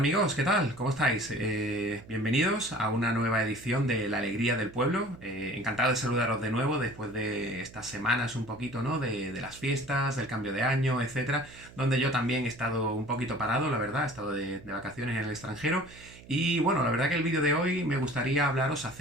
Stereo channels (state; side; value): noise; right; hum, 20 dB below the sound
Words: ¿qué tal? ¿Cómo estáis? Bienvenidos a una nueva edición de La Alegría del Pueblo. Encantado de saludaros de nuevo después de estas semanas un poquito, ¿no? De las fiestas, del cambio de año, etcétera, donde yo también he estado un poquito parado, la verdad, he estado de vacaciones en el extranjero. Y bueno, la verdad que el vídeo de hoy me gustaría hablaros